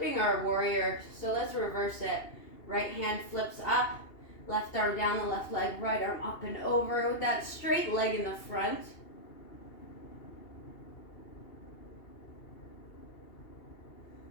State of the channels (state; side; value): late; right; 2.8 ms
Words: our warrior. So let's reverse it. Right hand flips up. Left arm down the left leg. Right arm up and over with that straight leg in the front.